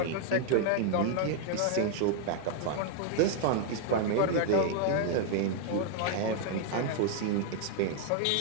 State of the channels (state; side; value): different; both; correlation 0.00